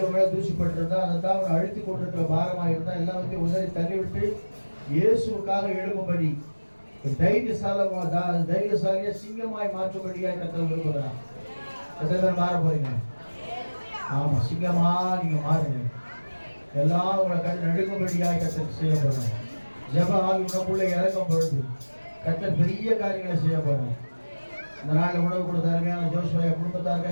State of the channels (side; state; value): both; inverted; correlation -1.00